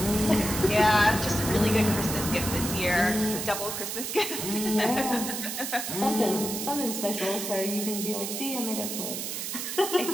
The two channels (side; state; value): right; noise; hiss, 4 dB below the sound